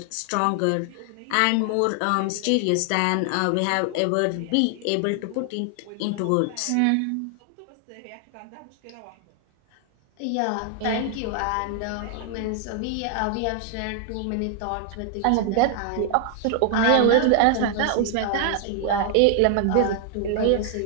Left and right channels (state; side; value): different; both; correlation 0.00